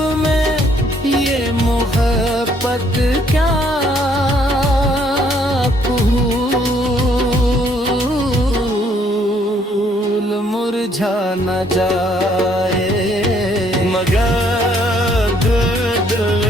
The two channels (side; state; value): both; normal; correlation 0.66